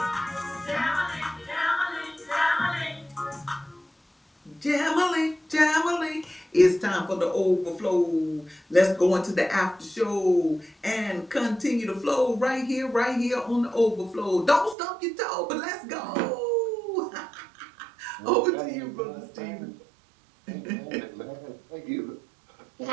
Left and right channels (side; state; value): left; drops out; at 14.8 s